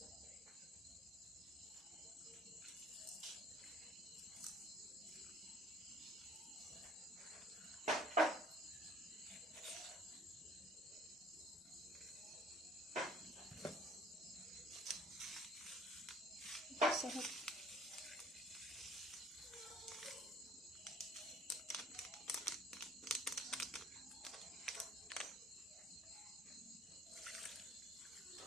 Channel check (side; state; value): both; normal; correlation 0.55